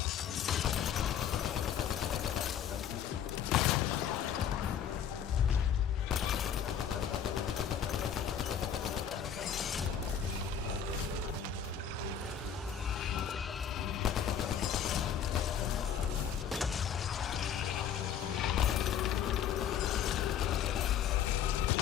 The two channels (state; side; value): quieter; right; 8.5 dB